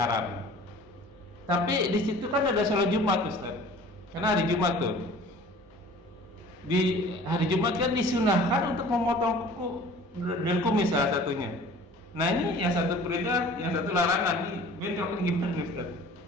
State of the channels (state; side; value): normal; both; correlation 0.46